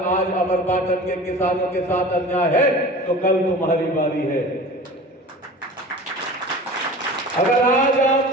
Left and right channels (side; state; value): both; normal; correlation 0.38